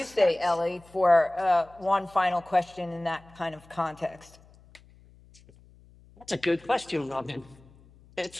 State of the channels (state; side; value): noise; left; hum, 26 dB below the sound